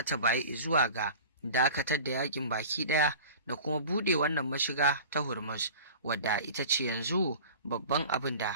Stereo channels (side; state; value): both; inverted; correlation -0.39